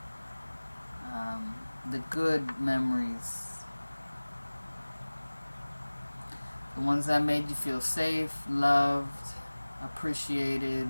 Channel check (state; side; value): inverted; both; correlation -1.00